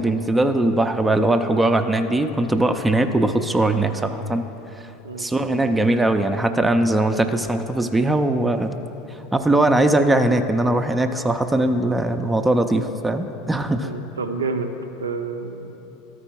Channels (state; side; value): normal; both; correlation 0.76